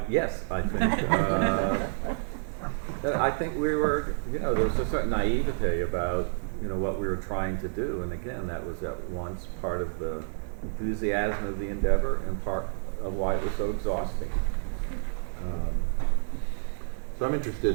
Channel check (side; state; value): left; silent; 59 dB below the other